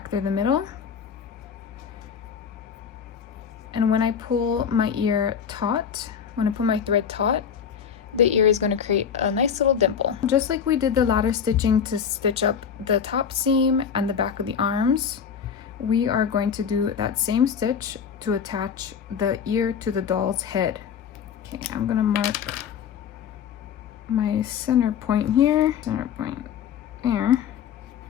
through the middle. And when I pull my ear taut, when I pull my thread taut, the ear is going to create a nice little dimple. Just like we did the ladder stitching to stitch up the top seam and the back of the arms, we are going to do that same stitch to attach the ear to the doll's head. Okay, I'm going to mark my center point here, center point there,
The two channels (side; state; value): right; quieter; 7.4 dB